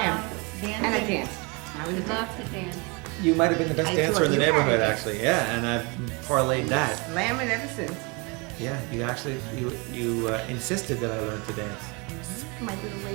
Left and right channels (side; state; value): left; quieter; 29.4 dB